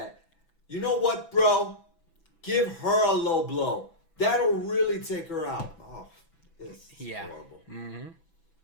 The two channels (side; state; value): right; late; 6.0 ms